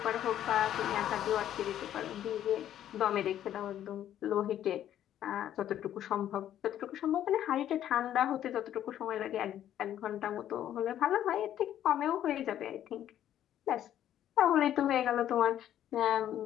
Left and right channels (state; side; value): quieter; right; 11.2 dB